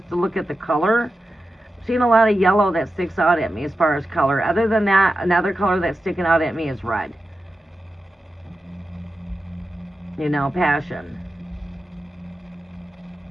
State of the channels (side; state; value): both; normal; correlation 0.91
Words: to look at the color, I'm seeing a lot of yellow that sticks out at me as far as color. Other than that, another color that's sticking out at me is red. You know, passion.